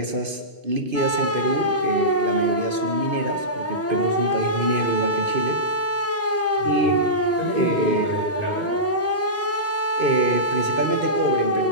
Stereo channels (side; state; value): both; normal; correlation -0.18